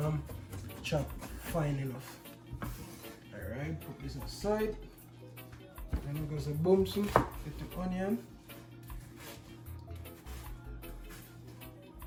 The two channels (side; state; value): both; identical; correlation 1.00